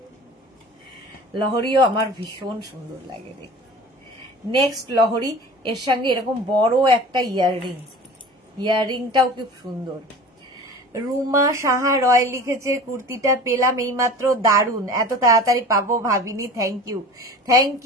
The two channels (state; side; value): normal; both; correlation 0.39